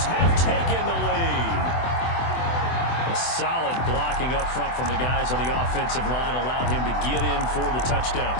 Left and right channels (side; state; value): right; late; 24 ms